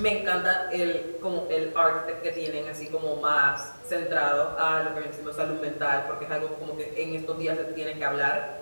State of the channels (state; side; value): inverted; both; correlation -1.00